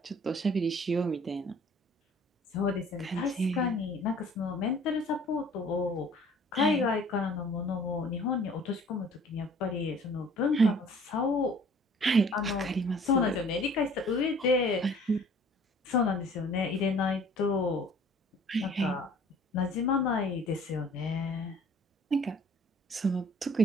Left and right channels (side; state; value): both; normal; correlation 0.52